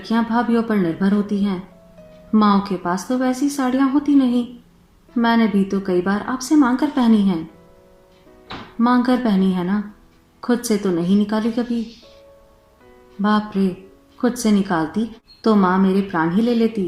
भाभीयों पर निर्भर होती हैं। माँओं के पास तो वैसी साड़ियां होती नहीं। मैंने भी तो कई बार आपसे मांग कर पहनी हैं। मांग कर पहनी है ना, खुद से तो नहीं निकाली कभी। बाप रे, खुद से निकालती तो माँ मेरे प्राण ही ले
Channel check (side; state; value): both; identical; correlation 1.00